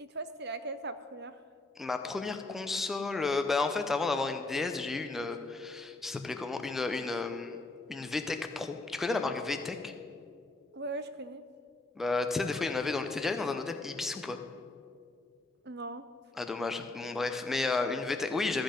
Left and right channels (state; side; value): quieter; right; 3.1 dB